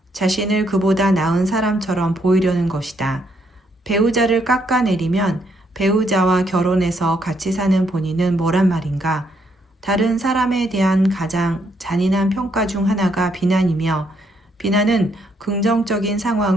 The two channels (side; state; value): both; normal; correlation 0.73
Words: 자신을 그보다 나은 사람처럼 보이려는 것이다. 배우자를 깎아내리면 배우자와 결혼해서 같이 사는 본인은 뭐란 말인가? 다른 사람에 대한 가장 잔인한 평가 중 하나가 비난이며 비난은 긍정적인